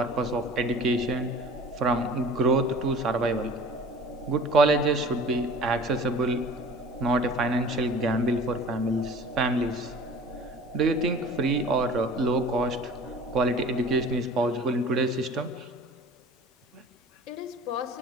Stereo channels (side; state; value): both; normal; correlation 0.43